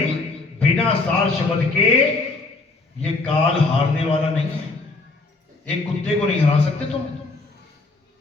बिना सार शब्द के ये काल हारने वाला नहीं है। एक कुत्ते को नहीं हरा सकते तुम।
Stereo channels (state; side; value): quieter; right; 3.4 dB